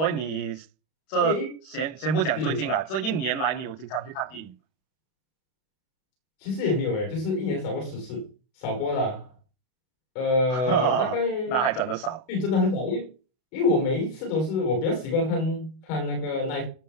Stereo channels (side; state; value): right; late; 32 ms